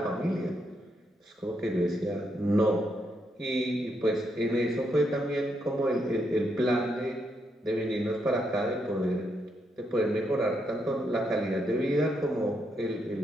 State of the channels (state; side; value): normal; both; correlation 0.79